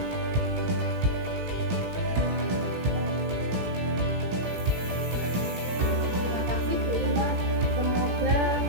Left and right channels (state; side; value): late; left; 17 ms